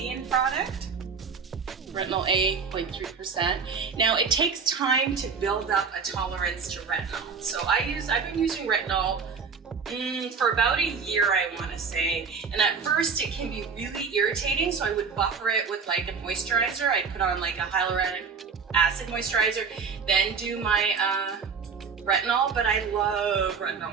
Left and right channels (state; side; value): quieter; left; 5.6 dB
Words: product. Retinol A, 0.3%. Now it takes time to build up a tolerance to retinol. So I've been using retinol for about a year, I want to say. And at first it can be really irritating, so I would buffer it with like a moisturizer. I'd put on like a hyaluronic acid moisturizer, then do my retinol. But I love